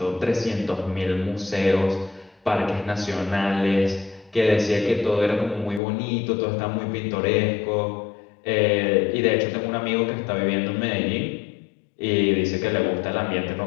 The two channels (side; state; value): right; drops out; at 5.8 s